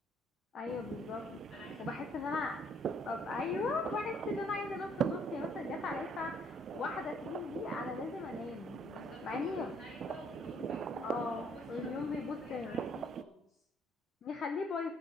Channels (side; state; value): both; normal; correlation 0.64